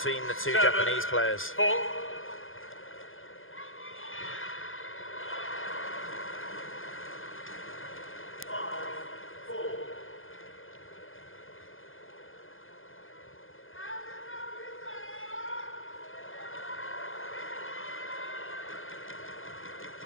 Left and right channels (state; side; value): late; right; 0.59 ms